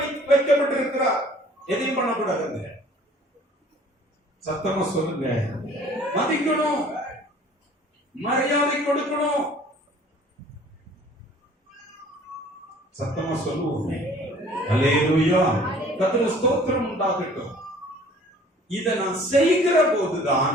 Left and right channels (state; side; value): normal; both; correlation 0.52